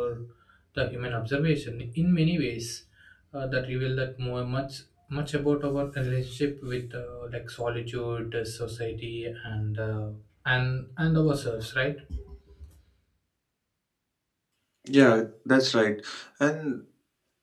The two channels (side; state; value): both; identical; correlation 1.00